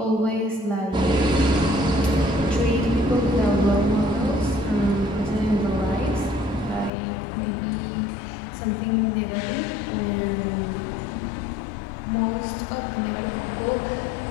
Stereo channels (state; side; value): drops out; right; at 6.9 s